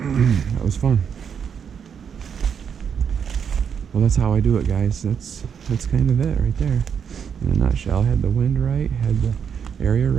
was fun. Well, that's how I do it, guys. That's kind of it right there. In a nutshell, had the wind right, had the area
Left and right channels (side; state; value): left; quieter; 7.4 dB